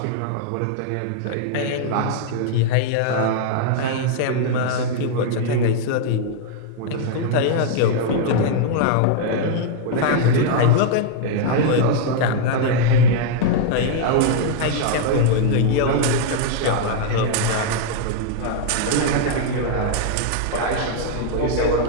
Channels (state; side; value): different; both; correlation -0.01